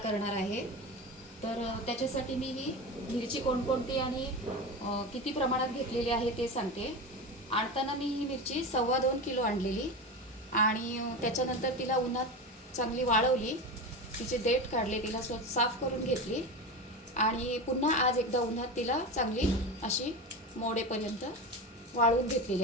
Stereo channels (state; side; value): normal; both; correlation 0.24